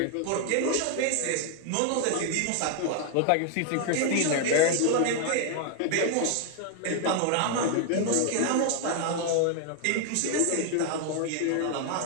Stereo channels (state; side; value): different; both; correlation 0.00